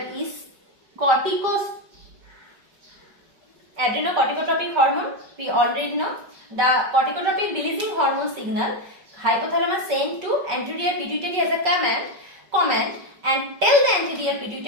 is adrenocorticotropic hormone. We already know the corticotropic releasing hormone signal hypothalamus sent to anterior pituitary as a command and tell the anterior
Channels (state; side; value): late; left; 5.3 ms